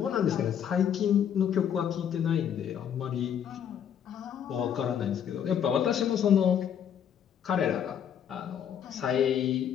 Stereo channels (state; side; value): quieter; right; 8.8 dB